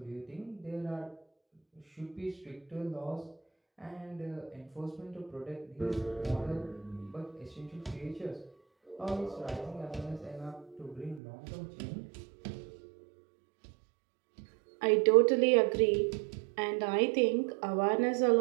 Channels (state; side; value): drops out; left; at 11.2 s